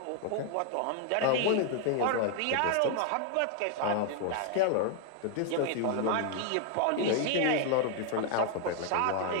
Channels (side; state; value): both; different; correlation 0.00